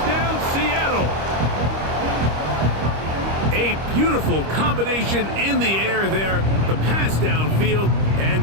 Seattle. A beautiful combination in the air there. The pass downfield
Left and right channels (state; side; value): late; left; 25 ms